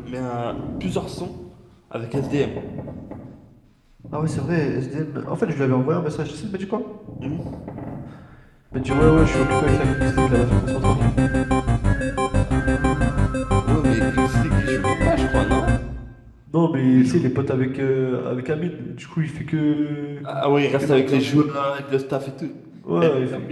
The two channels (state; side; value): identical; both; correlation 1.00